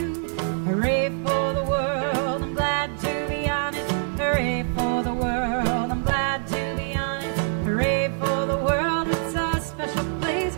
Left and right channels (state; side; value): silent; left; digital silence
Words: Hooray for the world, I'm glad to be on it. Hooray for the world, I'm glad to be on it. Hooray for the world, it's a special place.